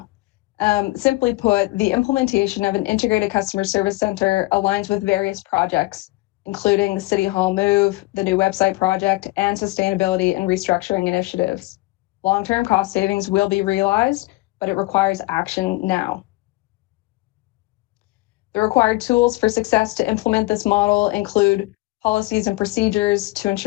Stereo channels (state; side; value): quieter; right; 21.1 dB